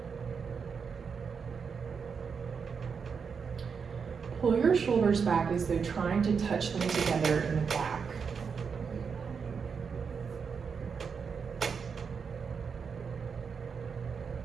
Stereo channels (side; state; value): left; quieter; 6.0 dB